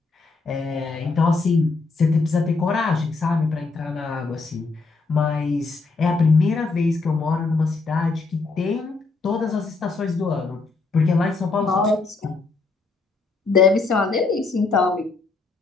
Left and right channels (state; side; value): quieter; right; 4.0 dB